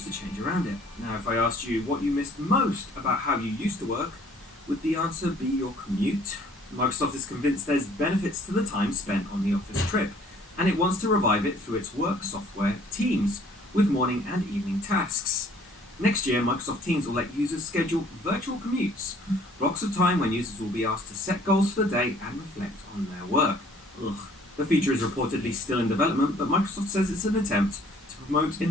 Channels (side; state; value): both; normal; correlation 0.57